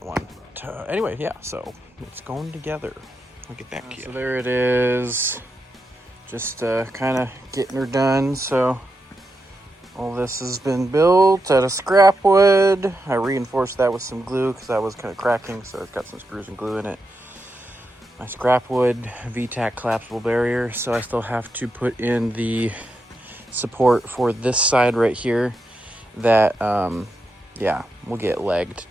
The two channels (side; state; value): both; normal; correlation 0.85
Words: one. But, anyway, yeah, so it's going together. I'll get back to you. So there it is. Just kind of getting her done. So all this has been built out of scrap wood. I reinforced that with some glue because that was kind of cracking, so it's got some screws and glue in it. My scrap wood V-tac collapsible barrier. So I still have to put in the support for this side right here that yeah, will get legged